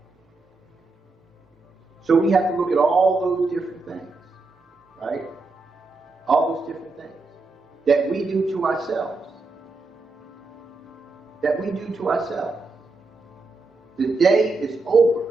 So we have to look at all those different things, right? All those different things that we do to ourselves. That we do to ourselves. The day is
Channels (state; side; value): quieter; left; 3.6 dB